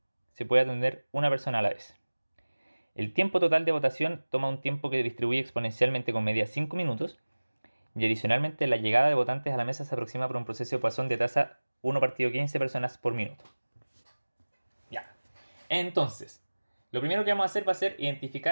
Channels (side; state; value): both; inverted; correlation -1.00